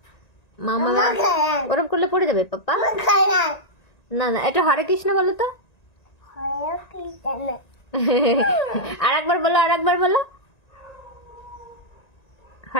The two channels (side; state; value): right; late; 1.9 ms